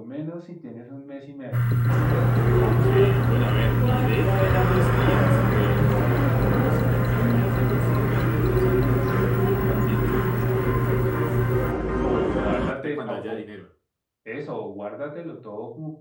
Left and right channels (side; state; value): both; identical; correlation 1.00